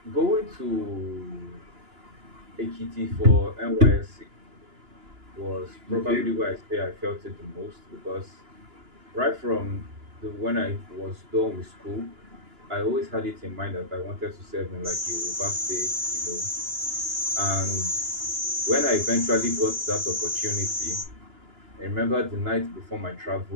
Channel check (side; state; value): left; late; 2.9 ms